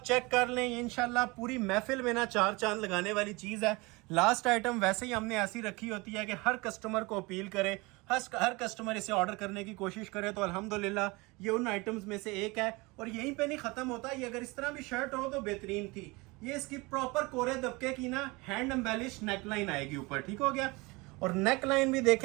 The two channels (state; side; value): quieter; left; 24.7 dB